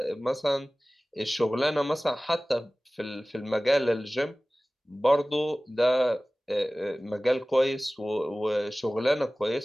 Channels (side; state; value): both; normal; correlation 0.98